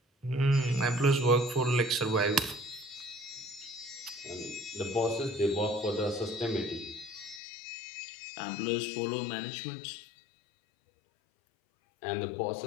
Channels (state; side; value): drops out; right; at 7.4 s